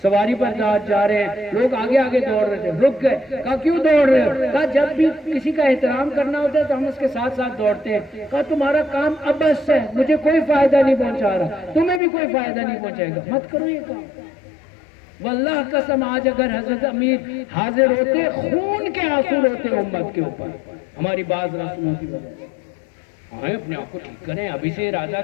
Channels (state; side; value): drops out; right; at 12.0 s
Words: سواری پر جا رہے ہیں، لوگ آگے آگے دوڑ رہے تھے، رک گئے، کہا کیوں دوڑ رہے ہو؟ کہا جب بھی کسی کا احترام کرنا ہوتا ہے تو ہم اس کے ساتھ ساتھ دوڑتے ہیں۔ کہا تمہارا کام ابس ہے، مجھے کوئی فائدہ نہیں پہنچا رہا، تمہیں بھی کوئی فائدہ نہیں پہنچائے گا، مت کرو یہ کام۔ واللہ قسم آج اگر حضرت امیر حاضر ہوتے خون کے آنسو روتے امت کے اوپر ہماری بعض رسموں کی وجہ سے۔ آئیں اپنے آپ کو ٹھیک کریں، ابھی سے ارادہ